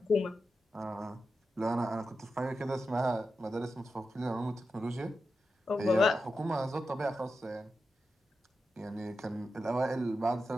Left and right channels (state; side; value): normal; both; correlation 0.90